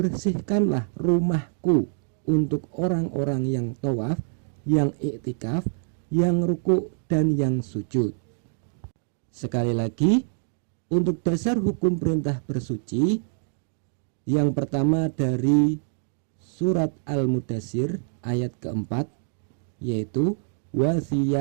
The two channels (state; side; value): silent; left; digital silence